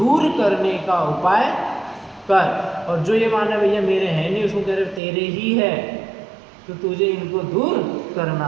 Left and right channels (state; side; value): drops out; left; at 5.0 s